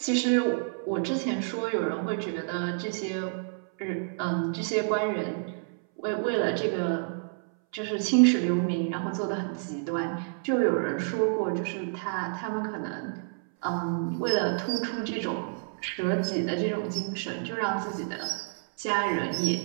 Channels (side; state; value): left; silent; 59 dB below the other